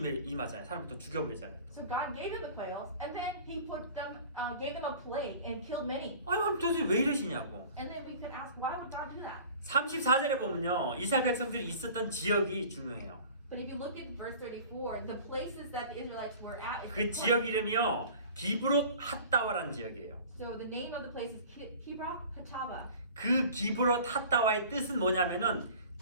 임하잖아요. 사람을 또 죽여버리잖아요. 또. So God gave them the quails, and then He gave them a plague and killed many. 아니 그럼 도대체 왜 이러시냐고. And then we could ask, why would God do that? 34절에 보면요. 이스라엘 백성들이 있었던 지역이 중요해요. But if you look at verse 34, the places that the Israelites were at is 그 지역 이름이요. 기브롯 핫다와라는 지역이에요. So the name of the place is Kibroth Hatava. 그 기브롯 핫다와의 뜻은 뭐냐면은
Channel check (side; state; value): both; inverted; correlation -0.43